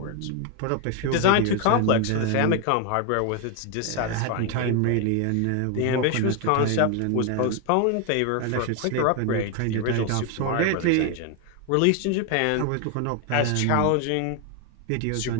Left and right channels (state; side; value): different; both; correlation 0.01